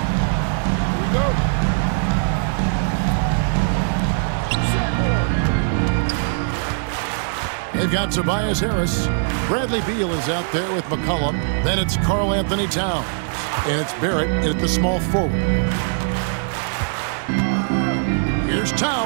Here we go. They've got Tobias Harris. Bradley Beal is out there with McCollum. Then it's Karl Anthony Towns. And it's Barrett at the small forward. Here's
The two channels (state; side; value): silent; left; digital silence